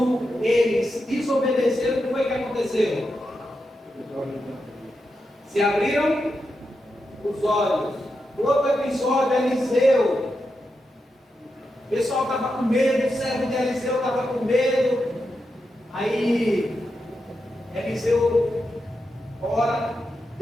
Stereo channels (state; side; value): normal; both; correlation 0.87